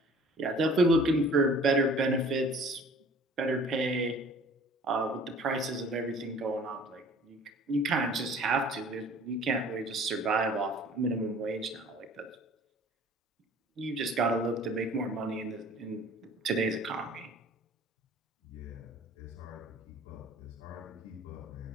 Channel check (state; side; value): normal; both; correlation 0.50